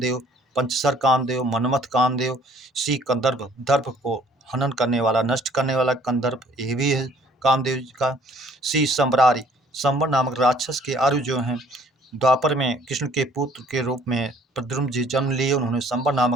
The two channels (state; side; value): normal; both; correlation 0.57